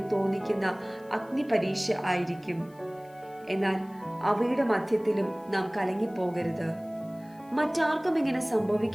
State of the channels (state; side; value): noise; left; hiss, 29 dB below the sound